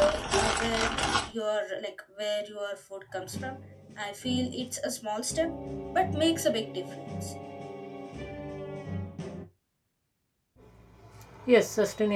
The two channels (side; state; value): both; identical; correlation 1.00